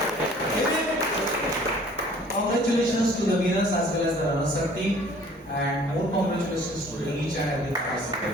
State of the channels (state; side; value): normal; both; correlation 0.52